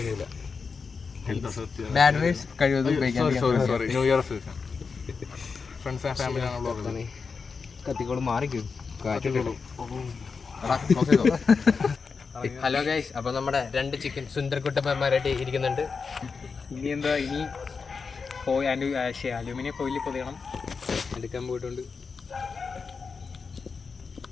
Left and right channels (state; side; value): quieter; right; 5.1 dB